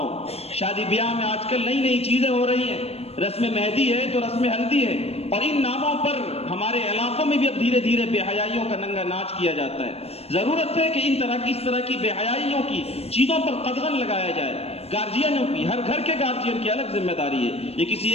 شادی بیاہ میں آج کل نئی چیزیں ہو رہی ہیں، رسم مہندی ہے تو رسم ہلدی ہے، اور ان ناموں پر ہمارے علاقوں میں بھی اب دھیرے دھیرے بے حیائیوں کا ننگا ناچ کیا جاتا ہے. ضرورت ہے کہ اس طرح کی بے حیائیوں کی چیزوں پر قدغن لگایا جائے. گارجینوں کی، ہر گھر کے گارجین کی الگ ذمہ داری ہے، یہ کسی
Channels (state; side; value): late; right; 0.29 ms